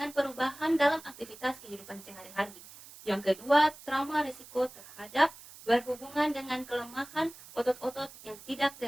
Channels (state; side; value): noise; right; hiss, 18 dB below the sound